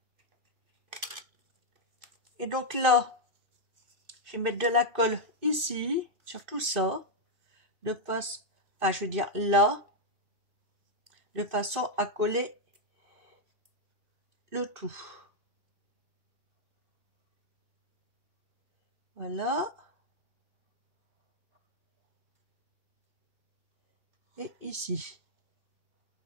Et donc là, je vais mettre de la colle ici, sur tout ça, de façon, enfin je veux dire là, de façon à coller le tout. Voilà. Et ici.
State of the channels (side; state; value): left; late; 2.6 ms